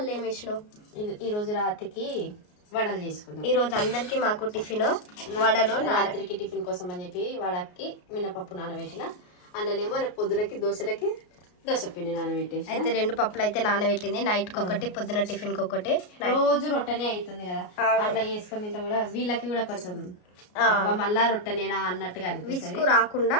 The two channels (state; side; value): late; right; 33 ms